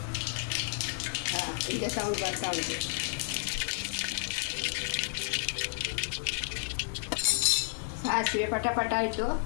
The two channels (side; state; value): right; silent; digital silence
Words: ಈಗ ಸೌಂಡ್ ಬರ್ತಾ ಉಂಟು. ಸಾಸಿವೆ ಪಟ ಆಯಿತು.